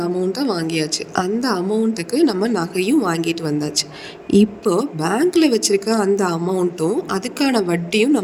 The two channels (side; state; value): both; identical; correlation 1.00